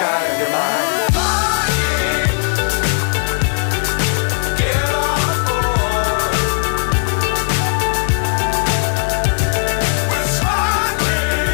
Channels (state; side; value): silent; right; digital silence